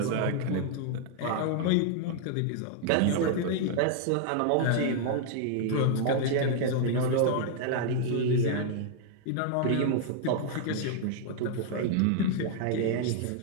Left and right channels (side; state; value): both; different; correlation -0.01